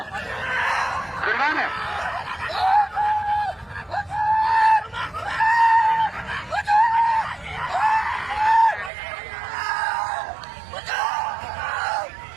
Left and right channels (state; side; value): drops out; left; at 8.9 s